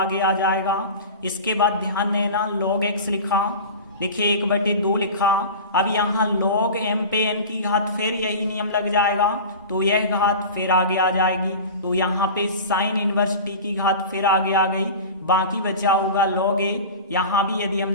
आ जाएगा। इसके बाद ध्यान देना log x लिखा, देखिए 1/2 लिखा। अब यहाँ log m पे n की घात फिर यही नियम लग जाएगा तो यह घात फिर आगे आ जाएगी। तो यहाँ पे साइन इनवर्स t की घात फिर आगे आ गई, बाकी बचा होगा log a। यहाँ भी यदि हम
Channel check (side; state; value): both; inverted; correlation -0.33